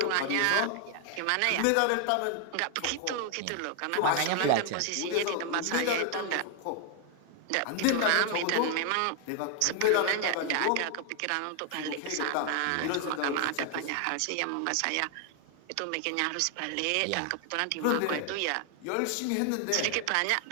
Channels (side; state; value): both; different; correlation 0.00